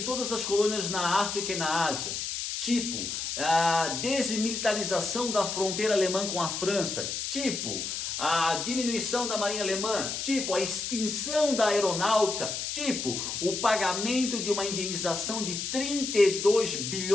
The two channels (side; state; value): left; noise; hiss, 4 dB below the sound